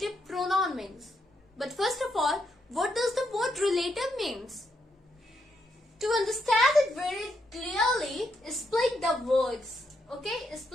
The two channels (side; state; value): both; normal; correlation 0.79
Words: pronoun means? But first of all, what does the word relative means? To understand it very clearly, split the words. Okay,